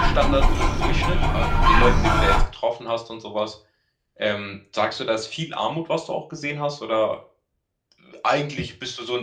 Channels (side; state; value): both; identical; correlation 1.00